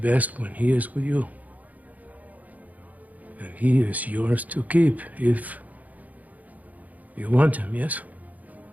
when he is with you. And he is yours to keep if you want him, yes?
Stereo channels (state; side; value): late; left; 0.077 ms